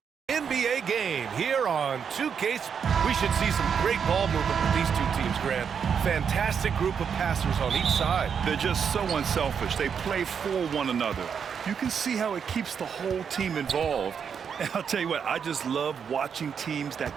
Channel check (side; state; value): left; quieter; 7.0 dB